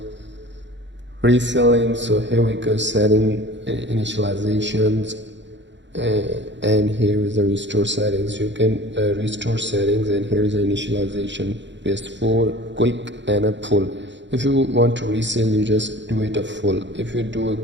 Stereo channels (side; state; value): left; late; 0.53 ms